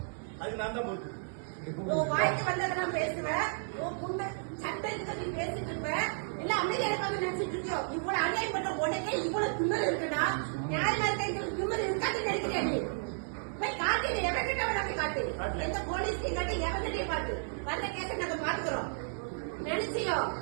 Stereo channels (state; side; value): silent; left; 56 dB below the other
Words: அது நான் தான் பொறுப்பு. வாய்க்கு வந்ததெல்லாம் பேசுவேன். சட்டத்துக்கு நீ பேசிட்டு இருப்ப. இல்ல அமைதியா இருக்காங்க நினைச்சிட்டு இருக்கியோ. இவ்வளவு அநியாயம் பண்ண உடனே இவ்வளவு திமிரு இருக்குன்னா நியாயமா இருக்க திமிரு இருக்காது நினைக்கிறேன். நீ போய் காட்டு, எவன்கிட்ட வேணாலும் காட்டு, எந்த போலீஸ்லையும் காட்டு, எவன்கிட்டயும் காட்டு. வந்த கேஸை நாங்க பாத்துக்கிறோம். நினைச்சியோ